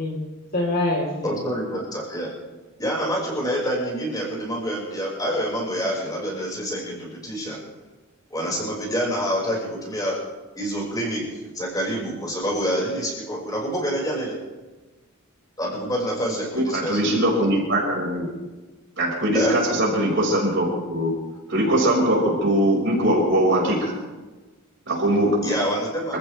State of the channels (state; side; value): normal; both; correlation 0.27